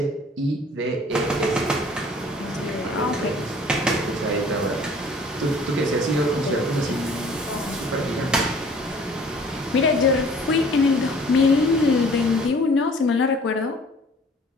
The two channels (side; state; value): both; normal; correlation 0.52